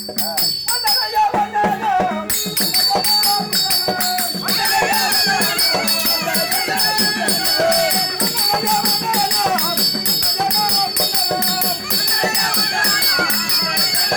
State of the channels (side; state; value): both; identical; correlation 1.00